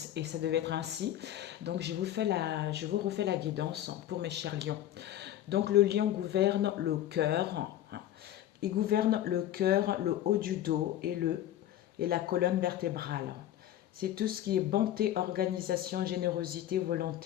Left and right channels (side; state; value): right; quieter; 12.2 dB